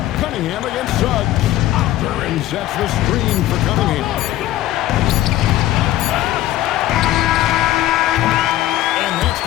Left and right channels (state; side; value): quieter; right; 14.5 dB